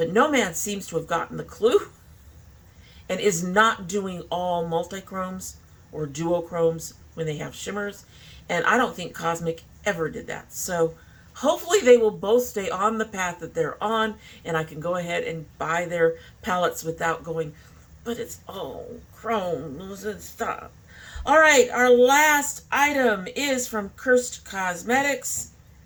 Nomad seems to have gotten the clue and is not doing all multichromes or duochromes when they have shimmers, and I don't think Cosmic ever did that. So hopefully they will both stay on the path that they're on, and I can go ahead and buy their palettes without going, but it's all chromes and stuff. All right, our last item is from Curst Cosmetics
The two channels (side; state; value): both; identical; correlation 1.00